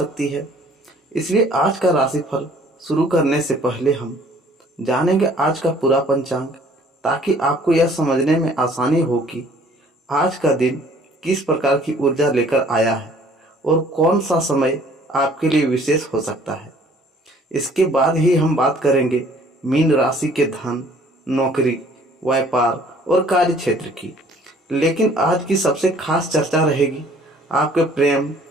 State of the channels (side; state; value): both; normal; correlation 0.56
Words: है। इसलिए आज का राशिफल शुरू करने से पहले हम जानेंगे आज का पूरा पंचांग, ताकि आपको यह समझने में आसानी हो कि आज का दिन किस प्रकार की ऊर्जा लेकर आया है और कौन सा समय आपके लिए विशेष हो सकता है। इसके बाद ही हम बात करेंगे मीन राशि के धन, नौकरी, व्यापार और कार्य क्षेत्र की। लेकिन आज की सबसे खास चर्चा रहेगी आपके प्रेम